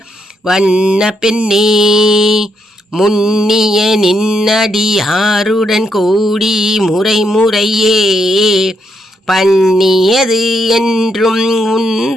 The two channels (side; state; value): both; normal; correlation 0.78